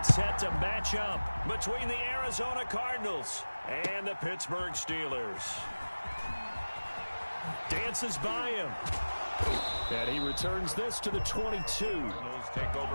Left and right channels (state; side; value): inverted; both; correlation -1.00